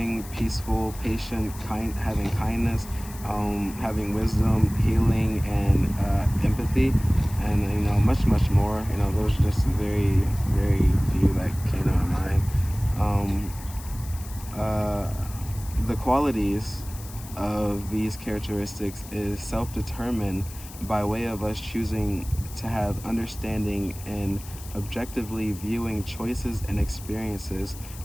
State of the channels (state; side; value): noise; left; hiss, 17 dB below the sound